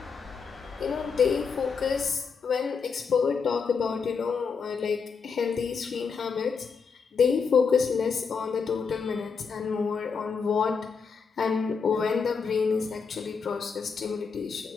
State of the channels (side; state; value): right; quieter; 5.5 dB